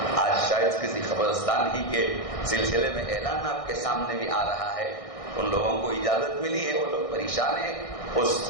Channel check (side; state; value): right; late; 1.6 ms